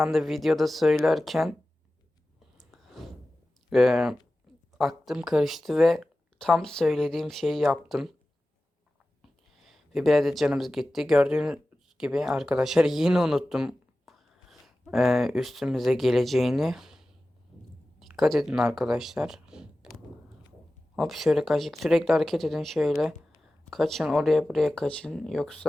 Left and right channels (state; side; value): normal; both; correlation 0.95